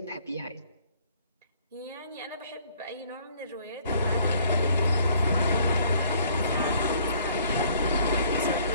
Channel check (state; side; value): inverted; both; correlation -0.60